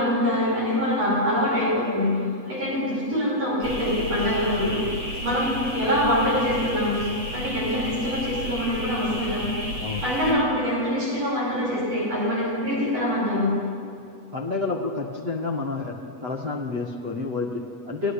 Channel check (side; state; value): left; late; 8.0 ms